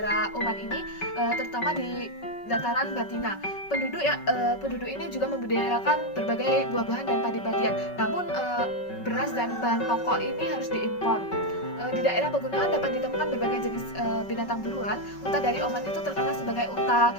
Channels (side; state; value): right; late; 5.3 ms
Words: Oman ini, terutama di dataran Batina. Penduduk ini juga membudidayakan berbagai buah-buahan dan padi-padian. Namun beras dan bahan pokok ini harus diimpor. Di daerah pegunungan dapat ditemukan berbagai jenis binatang buruan. Unta dari Oman itu terkenal sebagai unta